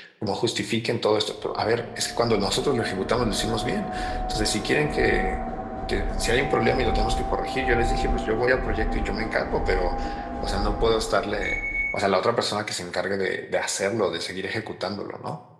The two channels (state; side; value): identical; both; correlation 1.00